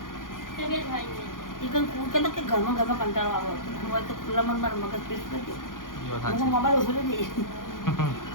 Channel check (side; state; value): right; late; 0.90 ms